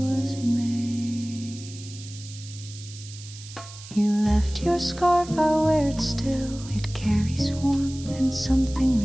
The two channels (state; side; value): noise; right; hiss, 16 dB below the sound